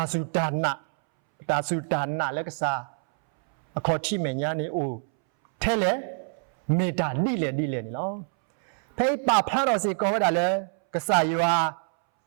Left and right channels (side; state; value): left; silent; 61 dB below the other